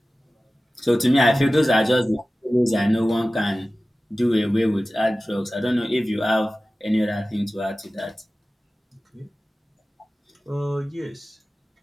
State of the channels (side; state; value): both; normal; correlation 0.96